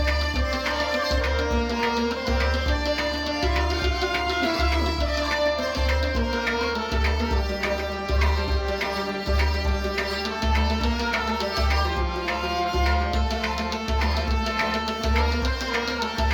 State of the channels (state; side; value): identical; both; correlation 1.00